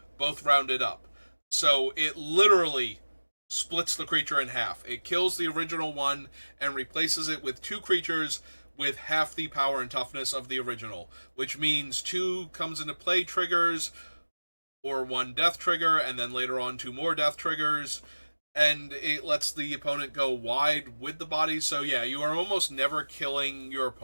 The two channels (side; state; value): both; inverted; correlation -1.00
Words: both rounded up. So it literally splits the creature in half. It kills the original one and replaces it with 2 creatures with half the power and toughness of the original, which means 2 comes into play triggers, or 1 death trigger, and then later on 2 more death triggers, and it lets the opponent go wide with the body. So yeah, you are almost never killing your